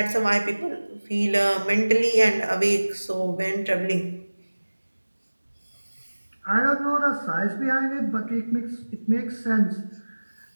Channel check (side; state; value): both; inverted; correlation -1.00